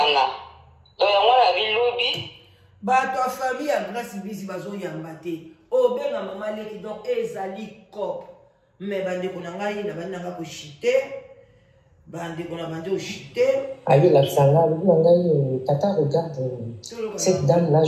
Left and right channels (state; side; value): identical; both; correlation 1.00